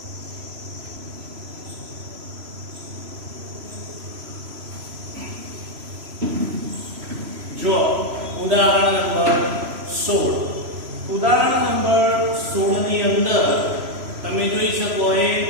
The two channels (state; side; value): late; left; 3.0 ms